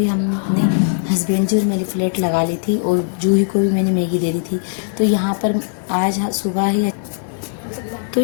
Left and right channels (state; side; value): silent; right; digital silence